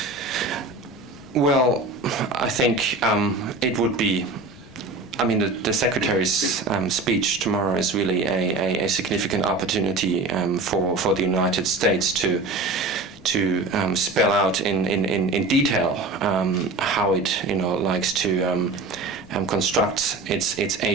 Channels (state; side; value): quieter; left; 3.3 dB